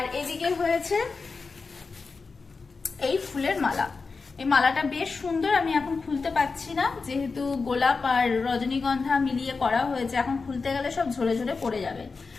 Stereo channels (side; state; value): right; quieter; 4.4 dB